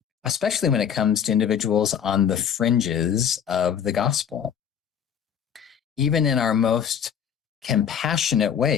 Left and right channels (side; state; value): right; quieter; 8.3 dB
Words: especially when it comes to individuals on the fringes of the gospel. Even in our most compassionate